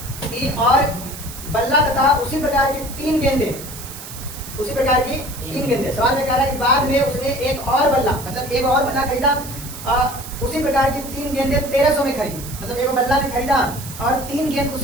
कि और बल्ला तथा उसी प्रकार की 3 गेंदे, उसी प्रकार की 3 गेंदे। सवाल में कह रहा है कि बाद में उसने एक और बल्ला, मतलब एक और बल्ला खरीदा, उसी प्रकार की 3 गेंदे 1300 में खरीदी। मतलब एक बल्ला भी खरीदा और 3 गेंद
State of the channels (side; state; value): right; noise; hiss, 12 dB below the sound